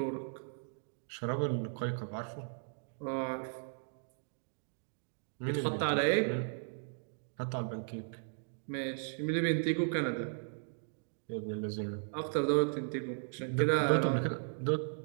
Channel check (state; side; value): silent; left; digital silence